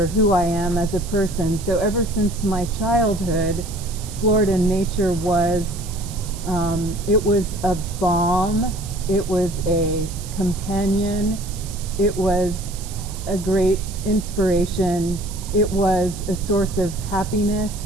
who I am as a person. So ever since my childhood, Florida nature was it was a balm, it was a companion, it was a great inspiration, it was a source of happiness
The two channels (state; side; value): noise; right; hiss, 14 dB below the sound